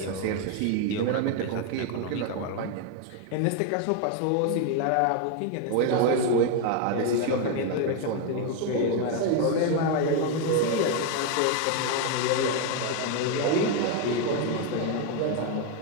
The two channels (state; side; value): different; both; correlation 0.01